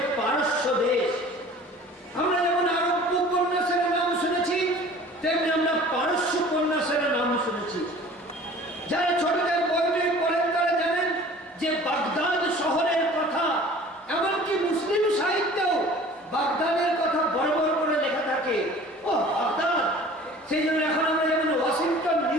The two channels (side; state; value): both; normal; correlation 0.46